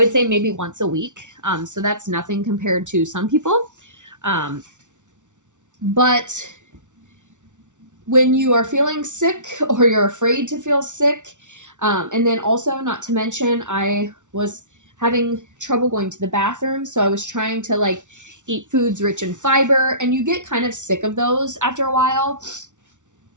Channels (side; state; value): left; late; 0.86 ms